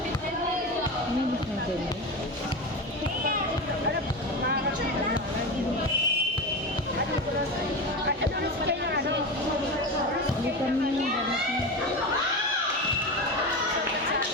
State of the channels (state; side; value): normal; both; correlation 0.22